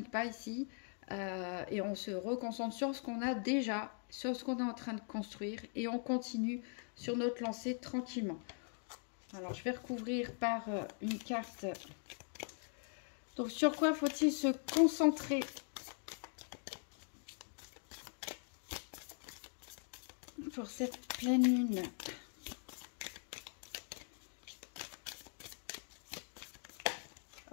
ici, et on se reconcentre sur ce qu'on a déjà, sur ce qu'on est en train de construire, et on continue sur notre lancée tranquillement. Alors, je vais recouvrir par une carte. Donc, sur quoi faut-il se concentrer pour cette pleine lune?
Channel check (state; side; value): silent; right; 50 dB below the other